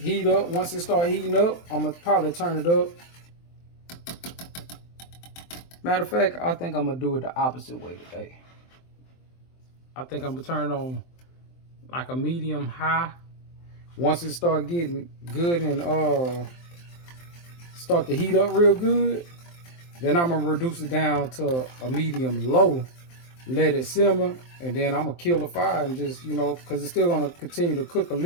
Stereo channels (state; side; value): late; right; 23 ms